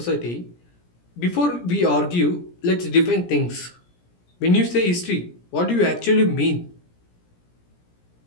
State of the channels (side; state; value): right; late; 17 ms